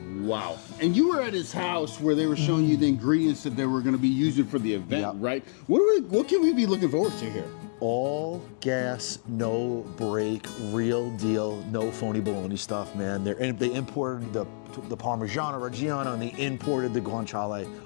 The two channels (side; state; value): right; silent; digital silence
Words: Wow. And you were at his house where they were showing you the ingredients that they were going to be using for the event, Yep. right? What can we be looking forward to here? All gas, no break, real deal, no phony baloney stuff, man. They imported the Parmigiano Reggiano and they imported the guanciale.